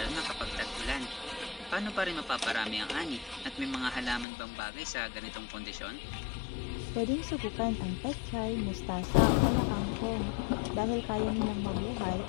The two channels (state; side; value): drops out; right; at 4.2 s